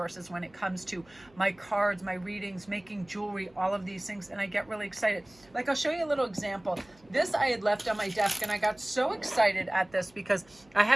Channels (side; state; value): right; noise; hum, 29 dB below the sound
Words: when it comes to my cards, my readings, making jewelry, all of these things. And I get really excited. Like, I'll show you a little example. This I had left on my desk, and I got so excited at this because I